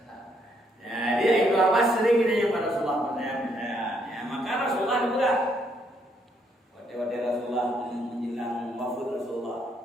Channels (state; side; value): normal; both; correlation 0.72